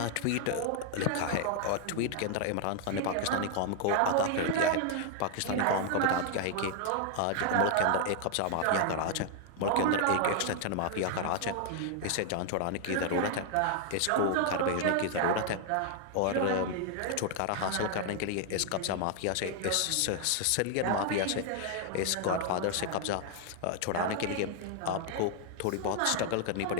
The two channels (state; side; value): different; both; correlation 0.00